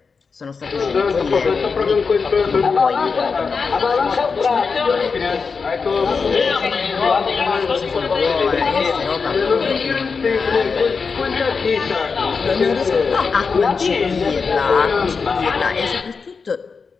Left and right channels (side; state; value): right; quieter; 5.1 dB